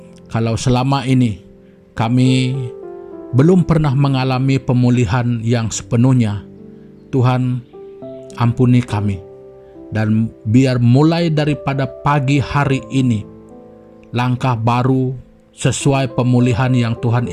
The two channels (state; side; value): identical; both; correlation 1.00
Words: kalau selama ini kami belum pernah mengalami pemulihan yang sepenuhnya, Tuhan ampuni kami. Dan biar mulai daripada pagi hari ini, langkah baru sesuai pemulihan yang Tuhan